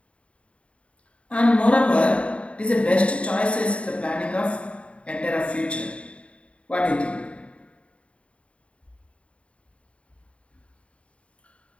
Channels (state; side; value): late; right; 0.062 ms